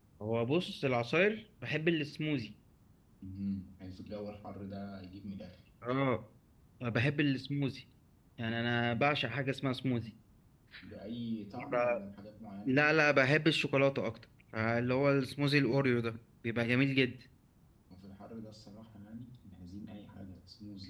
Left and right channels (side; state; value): both; identical; correlation 1.00